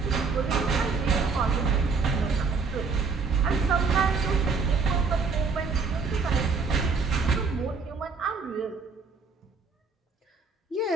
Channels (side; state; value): left; quieter; 4.8 dB